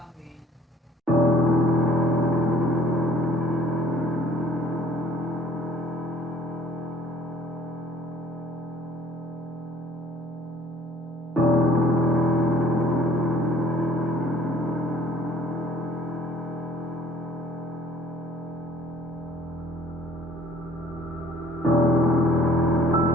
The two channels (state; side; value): normal; both; correlation 0.56